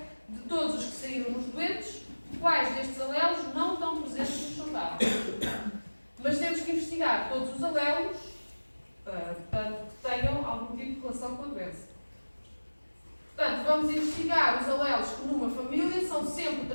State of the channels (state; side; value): inverted; both; correlation -1.00